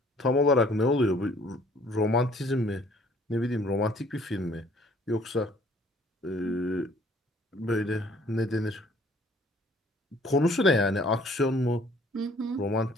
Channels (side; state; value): both; normal; correlation 0.58